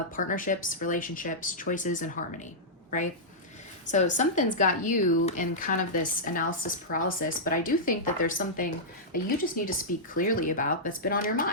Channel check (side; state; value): both; normal; correlation -0.11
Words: partnerships, relationships, choices, and harmony, right? So something's got you in kind of this analysis paralysis, but I do think that there's something that you just need to speak clearly about that's been on your